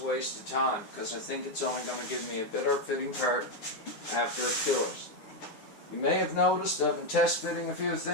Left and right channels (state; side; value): late; right; 9.7 ms